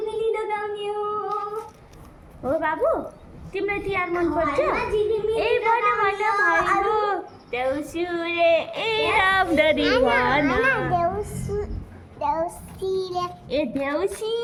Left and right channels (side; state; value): both; identical; correlation 1.00